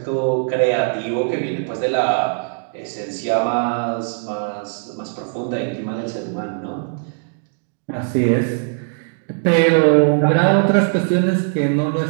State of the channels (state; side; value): silent; left; digital silence